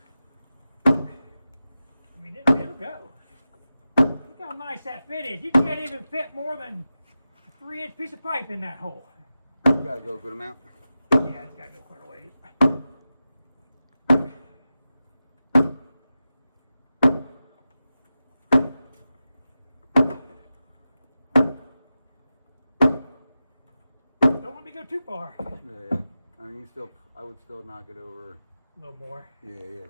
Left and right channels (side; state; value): both; inverted; correlation -0.93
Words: I mean, it'll go. Look how nice that fit is. You can't even fit more than a 3-inch piece of pipe in that hole. You gotta go a good amount. Yeah, it's got to go quite a ways. Don't let me go too far. Yeah. I mean, I would still knock it over. A little more. Yeah, a